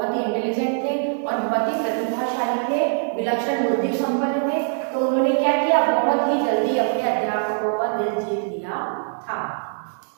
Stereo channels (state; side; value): silent; left; digital silence